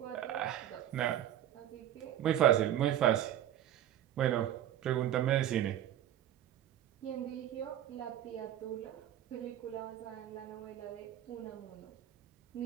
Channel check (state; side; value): quieter; left; 11.5 dB